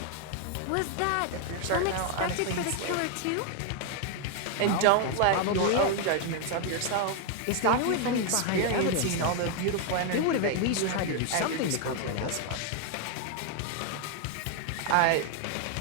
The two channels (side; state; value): both; different; correlation 0.00